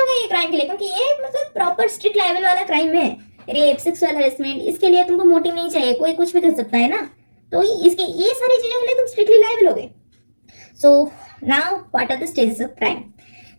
ये क्राइम के लिए, क्योंकि ये मतलब प्रॉपर स्ट्रिक्ट लायबल वाला क्राइम है. रेप, सेक्सुअल हरेसमेंट, इसके लिए तुमको मोटिव नहीं चाहिए, कोई कुछ भी कर सकता है ना. तो इसके ये सारी चीजों के लिए तुम स्ट्रिक्टली लायबल हो गए. So now what are the stages of crime?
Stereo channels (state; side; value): inverted; both; correlation -1.00